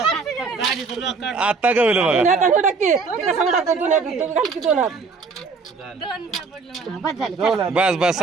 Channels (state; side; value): quieter; left; 4.6 dB